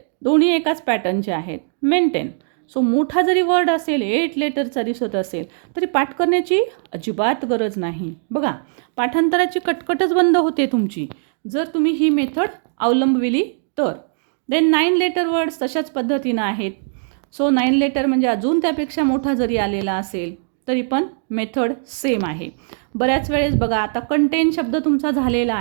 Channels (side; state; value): left; silent; digital silence